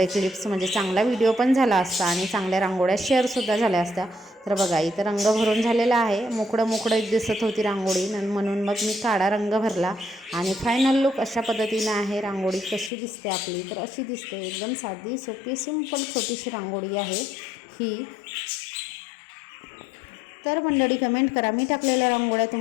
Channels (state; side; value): drops out; right; at 12.9 s